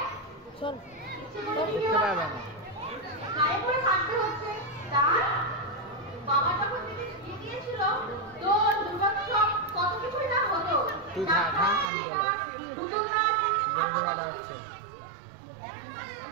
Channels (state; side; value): drops out; left; at 11.9 s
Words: গায়ে পড়ে থাকতে হচ্ছে। তার বাবা যখন থেকে বিয়ে দিয়েছিল তো দুর্গোৎসব কত কিছুই না হতো।